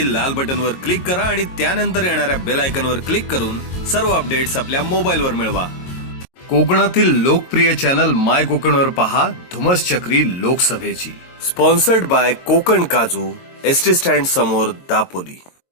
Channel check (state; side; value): late; right; 22 ms